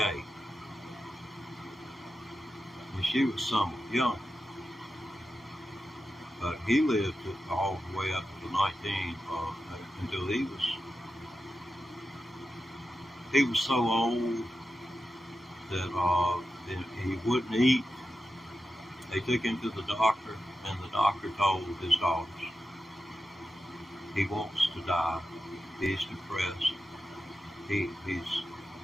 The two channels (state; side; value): normal; both; correlation 0.91